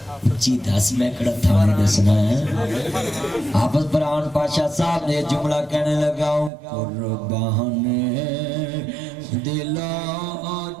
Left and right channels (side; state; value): left; drops out; at 6.5 s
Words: جی 10 میں کڑا تھا نہیں دسنا ہے. حافظ فرحان پاشا صاحب نے جملہ کہنے لگا ہوں قربان دل و